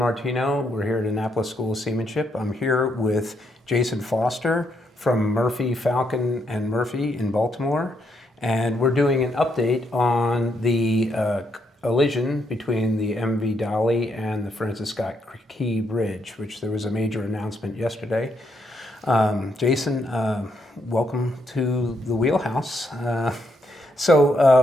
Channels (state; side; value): normal; both; correlation 0.76